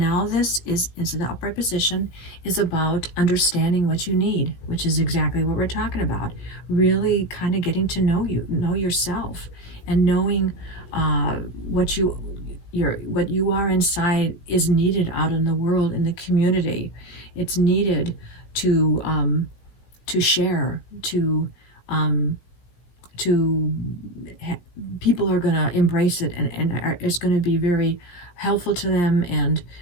this is in the upright position, is about understanding what you need, which is exactly what we're talking about. Really kind of getting to know yourself, and knowing what you are inside is needed out in the world, in the community. It's needed to share, people are going to embrace it, and it's going to be very helpful to them and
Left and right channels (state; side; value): late; right; 17 ms